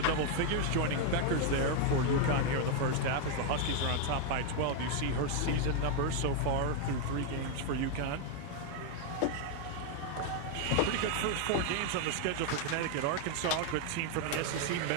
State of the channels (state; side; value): different; both; correlation 0.01